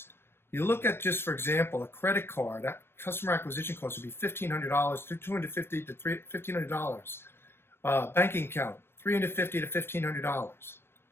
you look at, just for example, a credit card, that customer acquisition cost would be $1,500, $250 to $1,500. Banking account, $350 to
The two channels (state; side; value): late; right; 0.12 ms